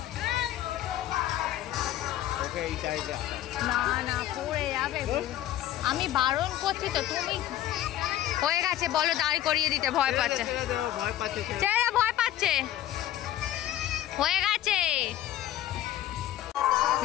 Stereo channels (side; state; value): right; quieter; 13.3 dB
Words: না না, পড়ে যাবে। আমি বারণ করছি তো, তুমি হয়ে গেছে বলো, দাঁড় করিয়ে দিতে। ভয় পাচ্ছে, ছেলেরা ভয় পাচ্ছে। হয়ে গেছে।